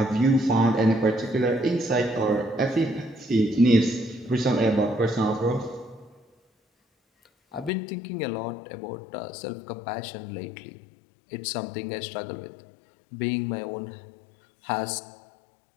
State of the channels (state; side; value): drops out; right; at 7.7 s